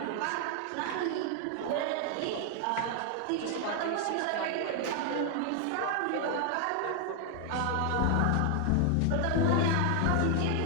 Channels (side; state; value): both; different; correlation 0.00